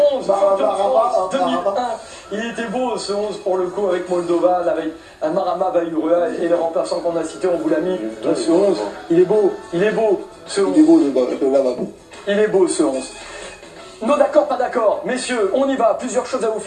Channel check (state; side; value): identical; both; correlation 1.00